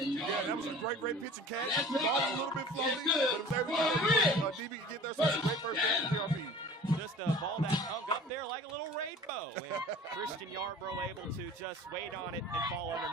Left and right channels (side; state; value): both; normal; correlation 0.43